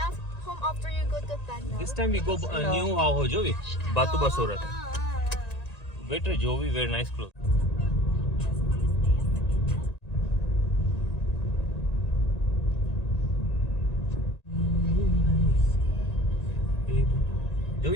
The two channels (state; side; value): late; right; 1.9 ms